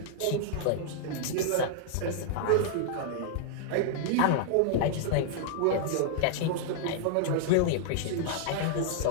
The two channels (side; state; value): both; different; correlation -0.01